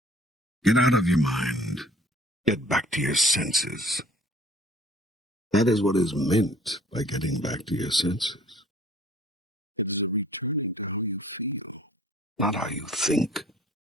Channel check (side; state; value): both; normal; correlation 0.53